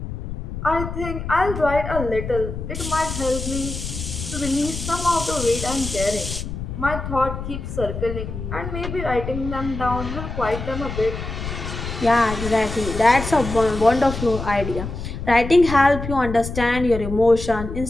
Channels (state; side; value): noise; left; rumble, 7 dB below the sound